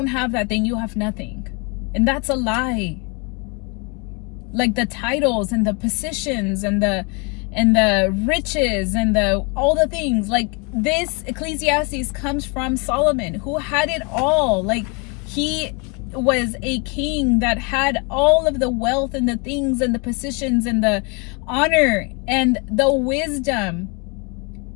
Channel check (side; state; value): right; quieter; 32.2 dB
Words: have that, then you have nothing. And that's a lie. Like the titles and the positions and the riches and all the things, like this Ecclesiastes comes from Solomon, who had it all. Like he was a king that had all of the wealth and the things and the positions and the honor and the wisdom.